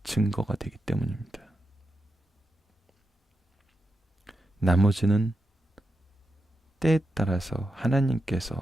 증거가 되기 때문입니다. 나머지는 때에 따라서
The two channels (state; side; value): normal; both; correlation 0.87